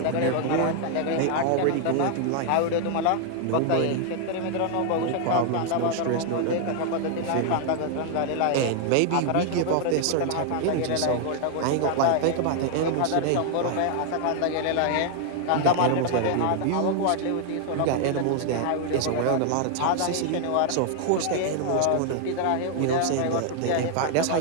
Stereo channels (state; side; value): different; both; correlation 0.00